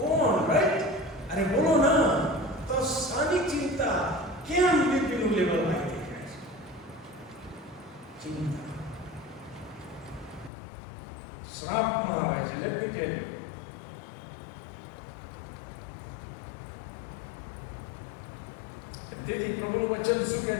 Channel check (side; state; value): right; drops out; at 10.5 s